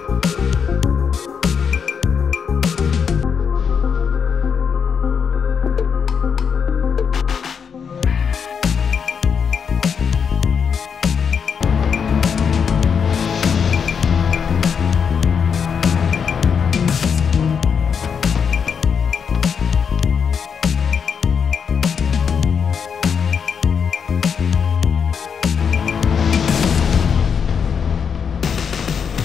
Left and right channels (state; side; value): quieter; right; 6.7 dB